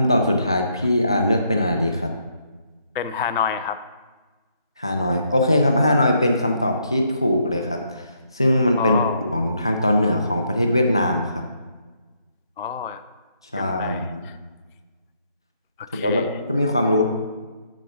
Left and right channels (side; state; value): both; inverted; correlation -0.73